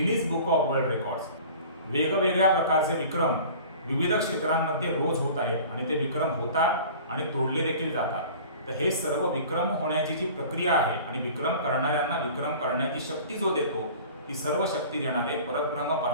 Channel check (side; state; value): both; inverted; correlation -0.43